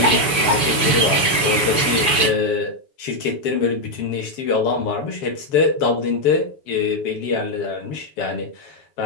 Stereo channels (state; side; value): late; right; 7.0 ms